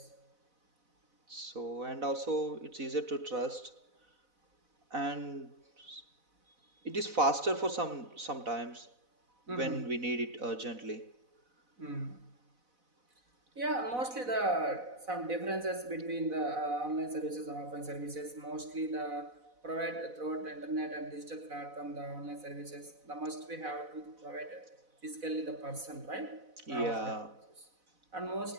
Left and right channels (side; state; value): left; late; 4.0 ms